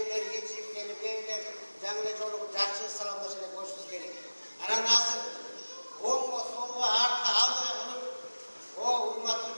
geçip gelip evler, canlı çoluğu, жақсы salamlaşıyla koşmamız gerek. Anam hazır. Oğlum soluğa arka aldığı bulup o urmatlı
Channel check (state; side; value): inverted; both; correlation -1.00